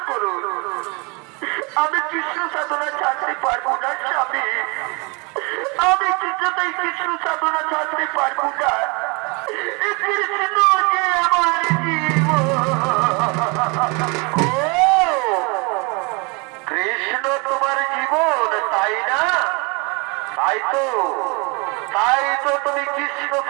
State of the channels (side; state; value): left; quieter; 30.1 dB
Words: করুন। আমি কৃষ্ণ সাধনা ছাড়তে পারবো না স্বামী, আমি কিছুতেই কৃষ্ণ সাধনা ছাড়তে পারবো না। কৃষ্ণ যে আমার জীবন। কৃষ্ণ তোমার জীবন, তাই না? তাই তো, তাই তো তুমি কৃষ্ণ